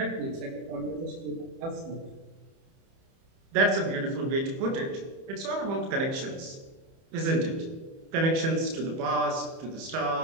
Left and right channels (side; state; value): left; late; 30 ms